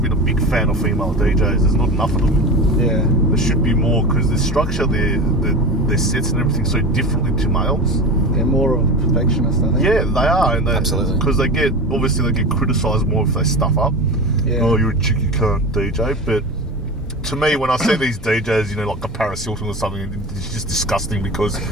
a big fan of female DJs. There's not enough of them. Yeah. There should be more, because the structure, their sets and everything so differently to males. They're more of a perfectionist, I think. Yeah, they are. And absolutely. Because they get criticised more if they stuff up. Yeah. Oh, you're a chick, you can't DJ. But to me, when I see these DJs, you know, like a Paris Hilton or something, it's just disgusting, because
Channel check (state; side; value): normal; both; correlation 0.27